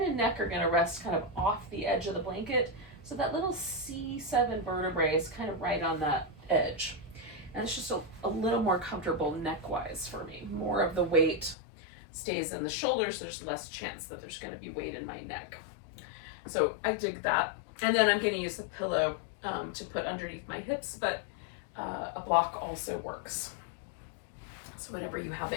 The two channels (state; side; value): drops out; right; at 11.6 s